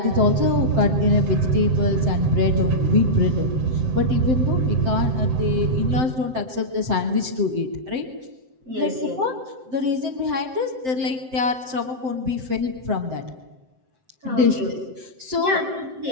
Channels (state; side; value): late; left; 7.7 ms